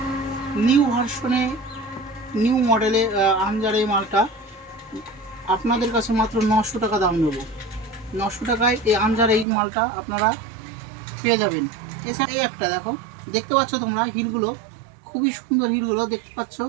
নিউ ভার্সনে, নিউ মডেলে আমজার এই মালটা আপনাদের কাছে মাত্র 900 টাকা দাম নেব। 900 টাকায় এই আমজার এই মালটা আপনারা পেয়ে যাবেন। এছাড়া এই একটা দেখো, দেখতে পাচ্ছ তোমরা হিলগুলো, খুবই সুন্দর হিলগুলো দেখতে পাচ্ছ।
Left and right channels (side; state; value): left; drops out; at 9.5 s